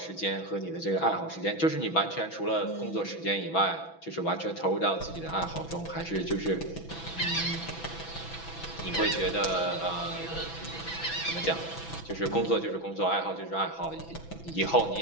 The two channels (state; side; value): late; right; 6.0 ms